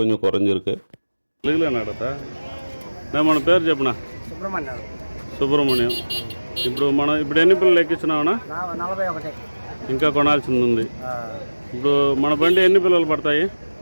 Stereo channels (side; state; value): both; inverted; correlation -1.00